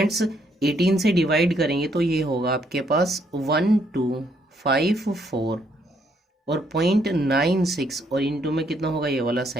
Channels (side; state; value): both; normal; correlation 0.71